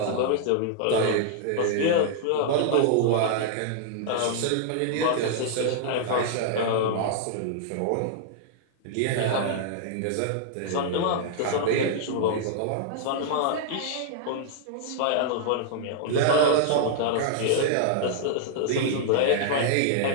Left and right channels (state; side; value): different; both; correlation -0.01